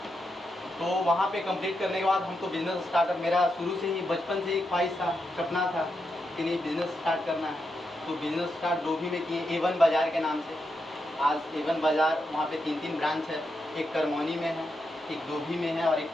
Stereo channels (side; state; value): both; normal; correlation 0.84